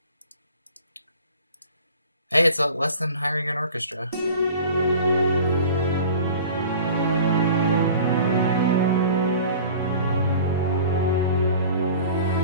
Hey, it's less than hiring an orchestra.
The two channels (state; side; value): inverted; both; correlation -0.43